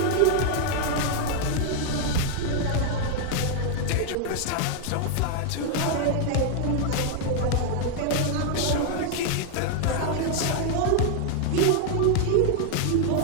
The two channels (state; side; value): different; both; correlation 0.00